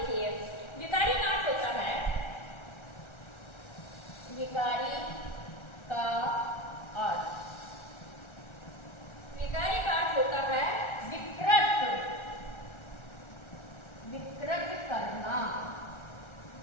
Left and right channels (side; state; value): right; late; 1.4 ms